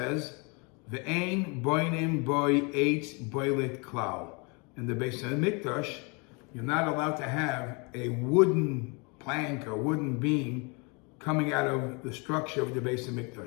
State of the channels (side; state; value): right; quieter; 31.5 dB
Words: Ve'ein boinim boi eitz boilet klal. In the Beis Hamikdash, you're not allowed to have a wooden plank or wooden beam coming out of the structure of the Beis